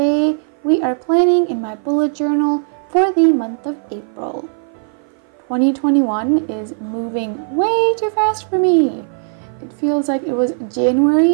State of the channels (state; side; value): silent; left; 56 dB below the other